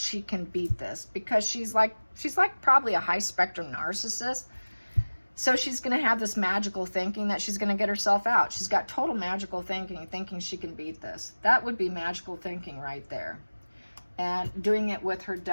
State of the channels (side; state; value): both; inverted; correlation -1.00